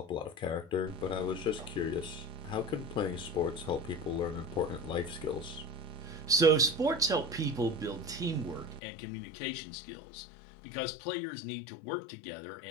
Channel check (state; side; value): drops out; right; at 8.8 s